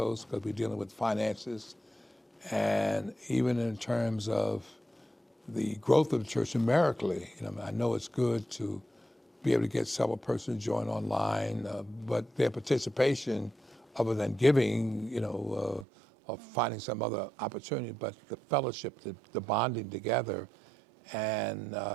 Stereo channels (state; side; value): drops out; left; at 15.9 s